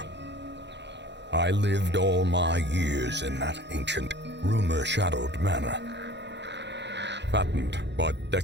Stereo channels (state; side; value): late; left; 0.51 ms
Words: I lived all my years in that ancient, rumor-shadowed manor, fattened by